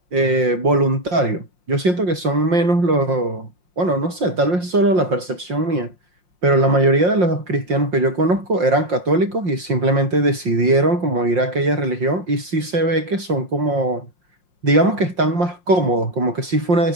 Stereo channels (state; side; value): late; left; 5.6 ms